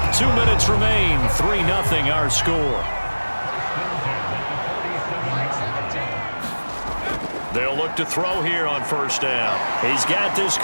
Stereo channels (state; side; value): inverted; both; correlation -1.00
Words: 2 minutes remain. 3-0 our score. They'll look to throw here on 1st down. He's got this